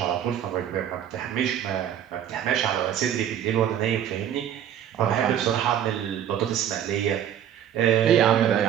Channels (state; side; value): quieter; left; 9.9 dB